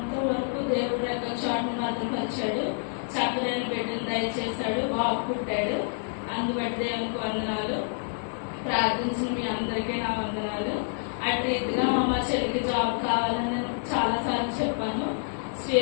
వరకు దేవుడు రెక్కల చాటును భద్రపరిచాడు. చక్కని బిడ్డను దయచేశాడు. బాబు పుట్టాడు. అందుబట్టి దేవునికి వందనాలు. ప్రార్థించిన మీ అందరికీ నా వందనాలు. అటు రీతిగా మా చెల్లికి జాబ్ కావాలని నేను చాలా సార్లు చెప్పాను.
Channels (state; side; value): silent; right; 56 dB below the other